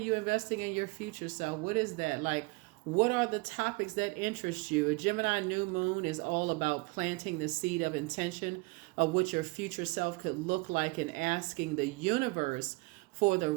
investing in your future self? What is that? Like, what are the topics that interest you? A Gemini new moon is all about planting the seed of intention of what your future self could look like and asking the universe for the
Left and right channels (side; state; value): left; quieter; 26.5 dB